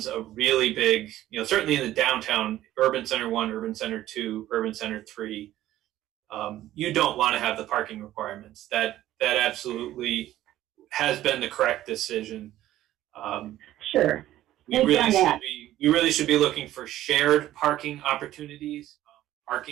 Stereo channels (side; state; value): left; quieter; 13.9 dB